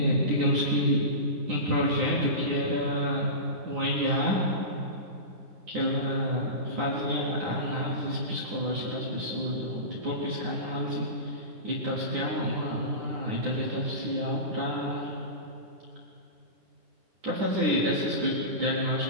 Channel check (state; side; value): late; left; 9.8 ms